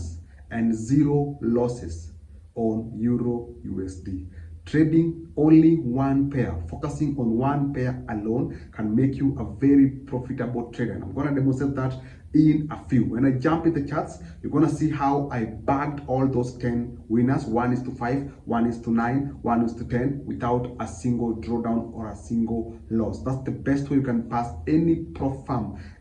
and 0 losses on Euro USD. Trading only one pair, focusing on one pair alone can make you a very profitable trader. And I'm going to demonstrate that in a few. When I jump in the charts, you're going to see how I bagged all those 10 winners, 1:5, 1:9, 1:10, without a single drawdown or a single loss. That's the best way you can pass any prop firm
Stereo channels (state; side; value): identical; both; correlation 1.00